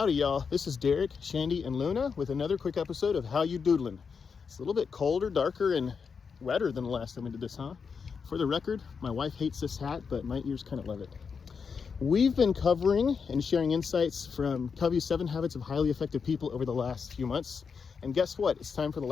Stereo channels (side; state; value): right; quieter; 5.8 dB